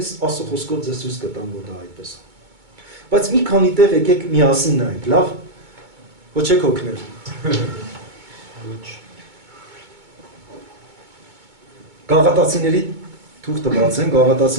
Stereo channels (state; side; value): late; left; 2.2 ms